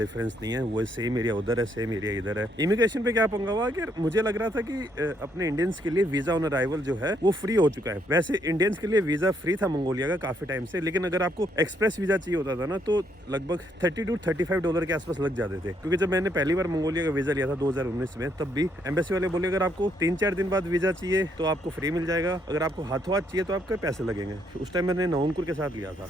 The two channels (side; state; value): both; normal; correlation 0.73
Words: नहीं है, वो सेम एरिया उधर है, सेम एरिया इधर है। इमिग्रेशन पे क्या पंगा हुआ कि मुझे लग रहा था कि अपने इंडियंस के लिए वीज़ा ऑन अराइवल जो है वो फ्री हो चुका है। वैसे इंडियंस के लिए वीज़ा फ्री था मंगोलिया का काफ़ी टाइम से, लेकिन अगर आपको एक्सप्रेस वीज़ा चाहिए होता था ना तो लगभग $30 to $35 के आसपास लग जाते थे। क्योंकि जब मैंने पहली बार मंगोलिया का वीज़ा लिया था 2019 में, तब भी एम्बेसी वाले बोले अगर आपको 3-4 दिन बाद वीज़ा चाहिए तो आपको फ्री मिल जाएगा, अगर आपको हाथों हाथ चाहिए तो आपके पैसे लगेंगे। उस टाइम मैंने नवंकुर के साथ लिया था।